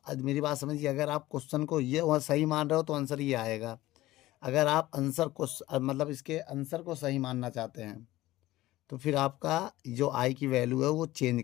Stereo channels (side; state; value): right; quieter; 16.8 dB